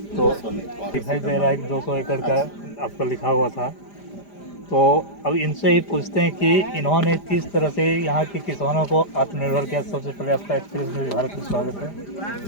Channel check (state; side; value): late; right; 5.0 ms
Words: तो दिखाई दे रहा है कि 200 एकड़ का आपका लिखा हुआ था। तो अब इनसे ही पूछते हैं कि इन्होंने किस तरह से यहाँ के किसानों को आत्मनिर्भर किया। सबसे पहले आपका एक्सप्रेस में भारत में स्वागत